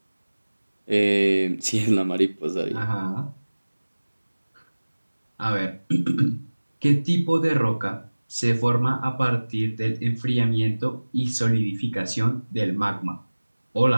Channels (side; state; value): both; inverted; correlation -1.00